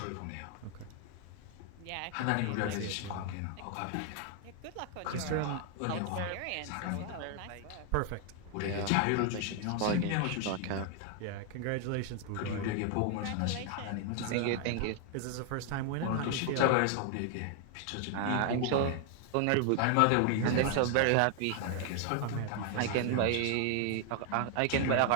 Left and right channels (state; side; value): different; both; correlation 0.00